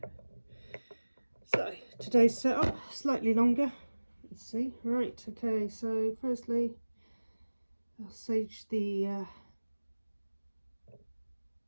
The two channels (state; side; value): inverted; both; correlation -1.00